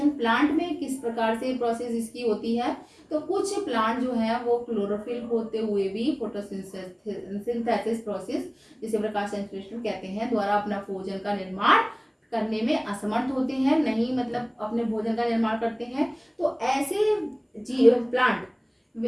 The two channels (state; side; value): identical; both; correlation 1.00